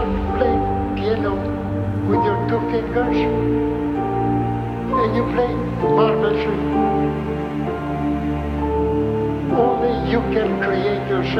playing piano with your 2 fingers and you play marvelously. Only you can create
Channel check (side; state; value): both; identical; correlation 1.00